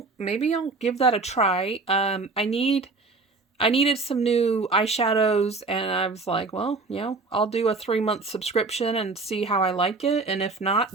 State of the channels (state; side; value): quieter; left; 3.9 dB